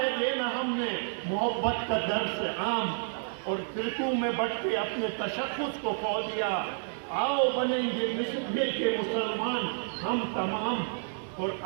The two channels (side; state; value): left; silent; digital silence